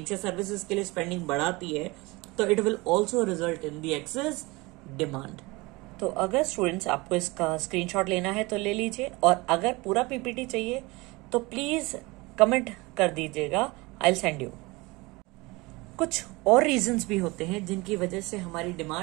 या सर्विसेज के लिए स्पेंडिंग बढ़ाती है तो it will also result in the excess demand. तो अगर स्टूडेंट्स आपको इसका स्क्रीनशॉट लेना है तो ले लीजिए, और अगर पूरा पीपीटी चाहिए तो प्लीज कमेंट कर दीजिएगा, आई विल सेंड यू। कुछ और रीजंस भी होते हैं जिनकी वजह से हमारी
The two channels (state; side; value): quieter; left; 23.6 dB